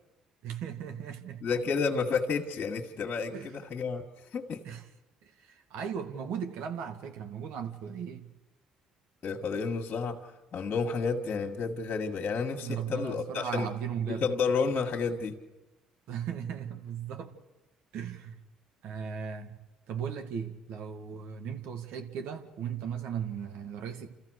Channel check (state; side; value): normal; both; correlation 0.63